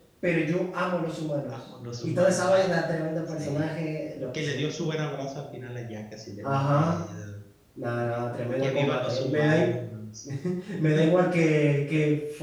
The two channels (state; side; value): identical; both; correlation 1.00